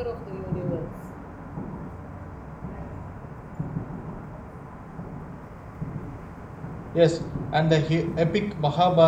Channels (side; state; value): both; identical; correlation 1.00